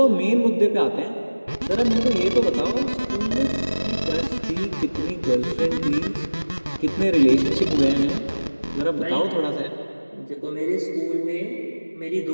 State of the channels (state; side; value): inverted; both; correlation -1.00